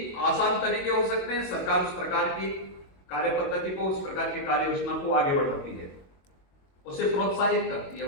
आसान तरीके हो सकते हैं, सरकार उस प्रकार की कार्य पद्धति को, उस प्रकार की कार्य योजना को आगे बढ़ाती है, उसे प्रोत्साहित करती है,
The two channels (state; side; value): late; right; 22 ms